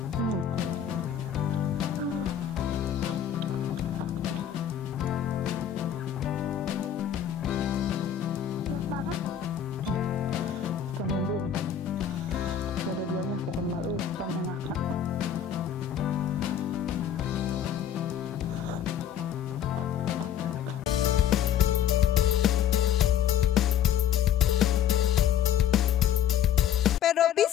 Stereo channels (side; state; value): right; quieter; 9.4 dB